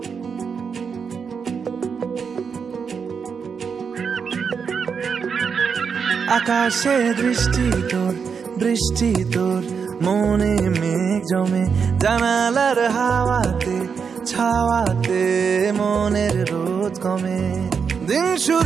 আকাশে দৃষ্টি তোর, বৃষ্টি তোর, মনে মেঘ জমে, জানালার হাওয়াতে ছাওয়াতে মনের রোদ কমে। দিন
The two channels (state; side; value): quieter; left; 6.2 dB